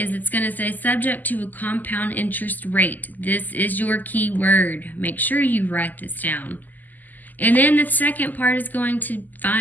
it's going to say subject to a compound interest rate. This is your key word. Make sure you write this down. And then the second part is going to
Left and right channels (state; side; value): late; right; 0.084 ms